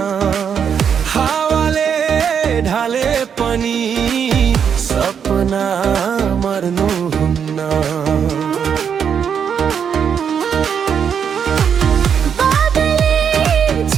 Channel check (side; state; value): left; quieter; 7.5 dB